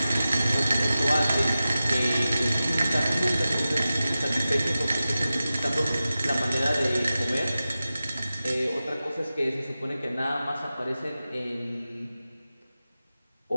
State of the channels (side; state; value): both; inverted; correlation -0.94